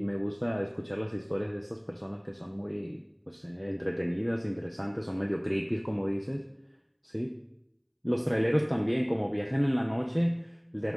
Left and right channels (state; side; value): identical; both; correlation 1.00